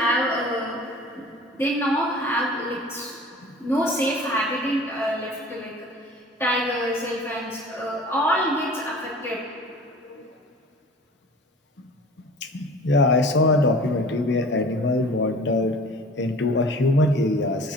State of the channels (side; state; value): both; normal; correlation 0.44